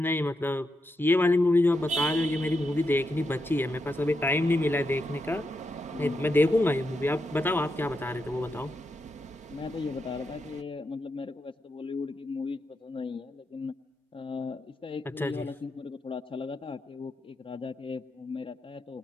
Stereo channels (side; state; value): both; normal; correlation 0.85